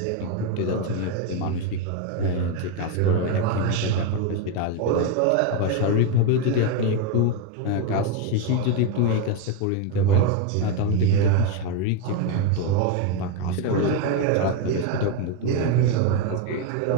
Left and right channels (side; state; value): both; different; correlation 0.02